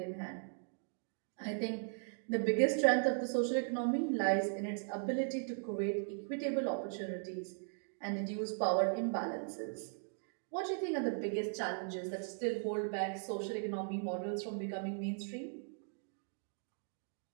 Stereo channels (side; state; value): left; silent; digital silence